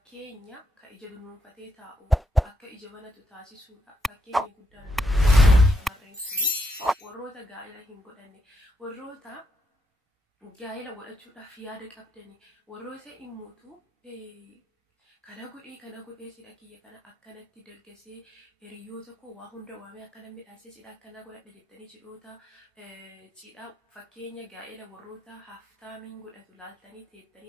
ka ija dunuunfatee taa'u akka ija banatu taasisuudha. Fakkeenya guddaan shamarreen suni warroota gaa'ela hin godhanne, warroota gaa'ela godhachuudhaaf yaada qabdani, warroota immoo kana godhee sidha kiyya kana akkanatti dargasee hiriyoota koo waa hunda waamee akkana midhaasee sidha akkana godhadha jettanii cidhoota cidha fakkeenya gaa'ela warroota haftaamiin godhatu laaltanii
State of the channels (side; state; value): both; normal; correlation 0.79